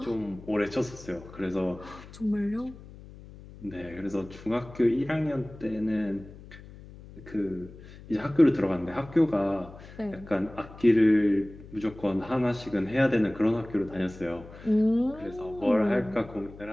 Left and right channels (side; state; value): left; noise; hum, 18 dB below the sound